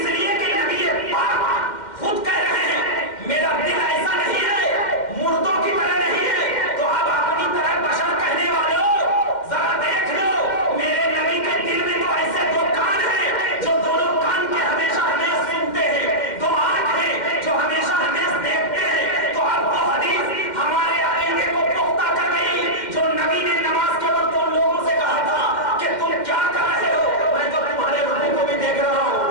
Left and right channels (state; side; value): late; right; 2.1 ms